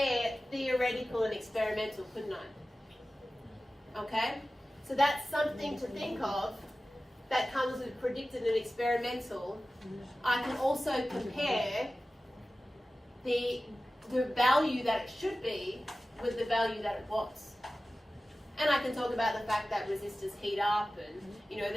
theoretical and experimental, couldn't I? Okay? So that's something to think of that comes with predicted and experimental. I can also compare the value that it should be with the value that it was. And I can talk about the fact that resistors heat up and,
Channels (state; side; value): normal; both; correlation 0.96